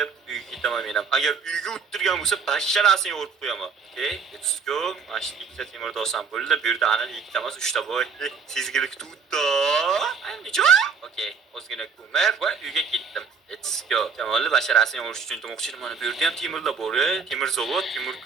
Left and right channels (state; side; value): quieter; left; 5.8 dB